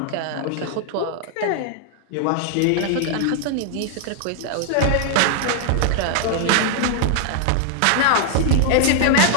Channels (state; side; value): different; both; correlation 0.00